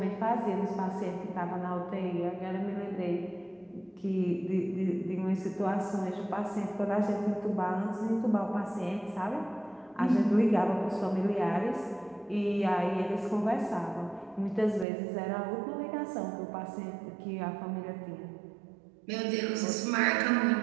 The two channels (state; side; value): drops out; left; at 14.9 s